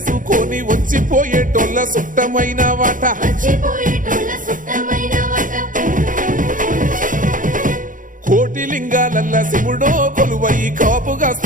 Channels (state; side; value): late; left; 0.39 ms